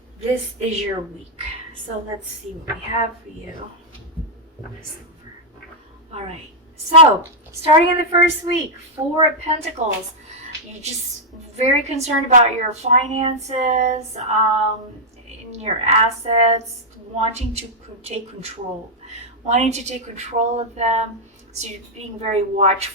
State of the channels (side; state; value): both; normal; correlation -0.04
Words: This is your week. So let's see what we have for you. All right. So, starting in the first week, 4 of Pentacles. You're just very concerned about your finances, in your assets, wanting to take control of them. So you're being very